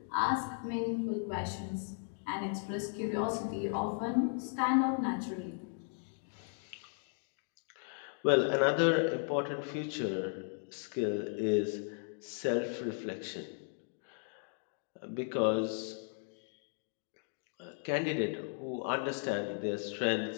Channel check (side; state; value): right; silent; 54 dB below the other